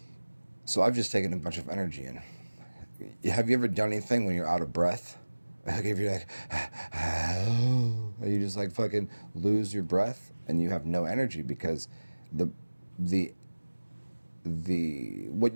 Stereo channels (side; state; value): both; inverted; correlation -1.00